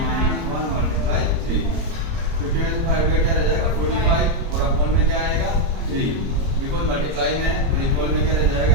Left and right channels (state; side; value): late; left; 30 ms